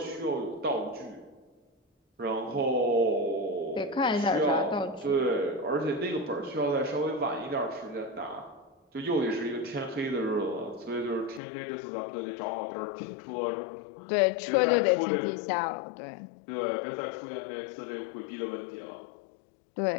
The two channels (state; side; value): drops out; right; at 11.4 s